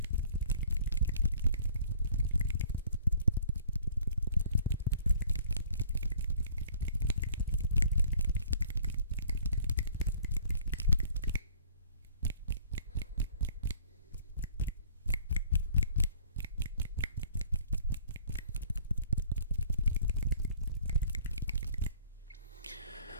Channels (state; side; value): inverted; both; correlation -0.54